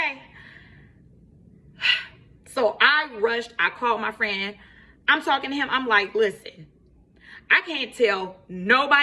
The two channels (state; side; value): identical; both; correlation 1.00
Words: So I rushed. I called my friend. I'm talking to him. I'm like, listen, I can't tell